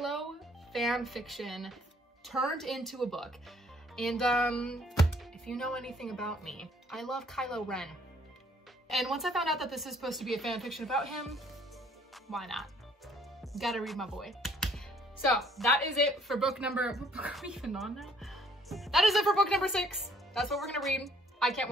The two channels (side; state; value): both; normal; correlation 0.61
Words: fan fiction turned into a book. And if you know anything about me, I love Kylo Ren. And once I found out that this is supposed to be a fan fiction about him, why not? Gotta read my boy. So that is it for book number, what book are we even on now? That is it for book number 6. That's what we're gonna read. I can't